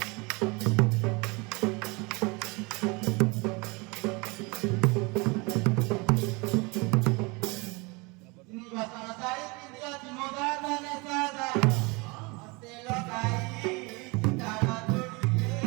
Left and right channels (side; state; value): left; quieter; 27.4 dB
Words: তিনি বাসনা সাই পিন্দিয়া চিমোদা দানে সাদা হস্তে লগাই চিতারা